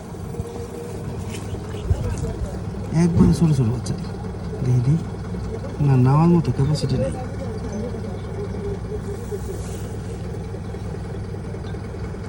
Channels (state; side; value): identical; both; correlation 1.00